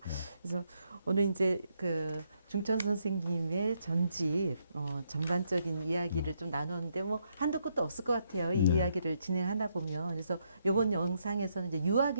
그래서 오늘 이제 그 중천 선생님의 전집 전반적인 이야기를 좀 나눴는데 뭐 한도 끝도 없을 것 같아요. 이 네. 이야기를 진행하다 보면 그래서 이번 영상에서는 이제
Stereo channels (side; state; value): both; inverted; correlation -0.76